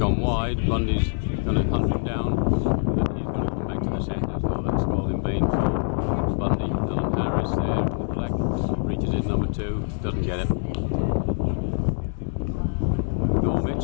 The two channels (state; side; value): silent; right; 62 dB below the other